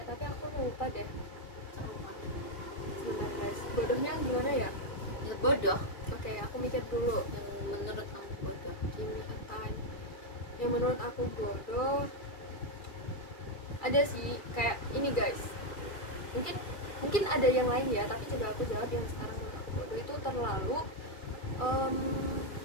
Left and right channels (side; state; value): right; late; 2.3 ms